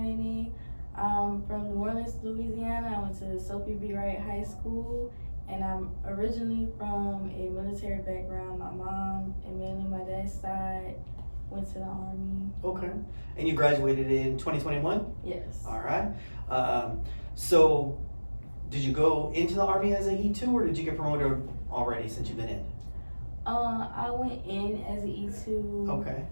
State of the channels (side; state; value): both; inverted; correlation -1.00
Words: I'm from New Orleans, Louisiana. I went to Sophie Wright High School, and I'm originally from a military background. My mom and mainly my dad's side went to the Army. Okay. And you graduated in 2021? Yes. All right. So, did you go into the Army as an E2 or did you get promoted already since you've been in? I went in as an E2. Okay.